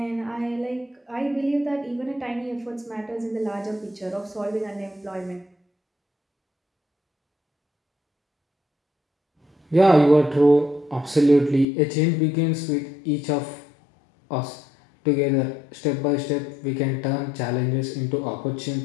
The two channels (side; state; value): right; drops out; at 11.7 s